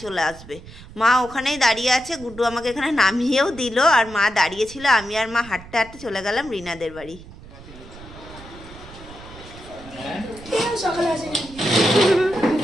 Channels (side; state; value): right; noise; rumble, 17 dB below the sound